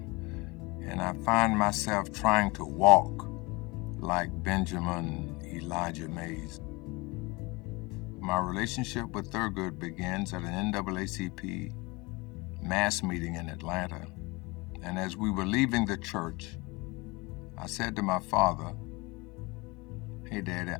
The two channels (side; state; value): right; quieter; 25.0 dB